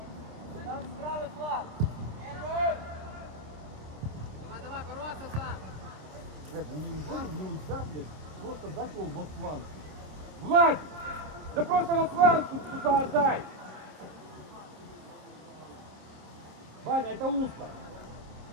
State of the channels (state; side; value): late; left; 26 ms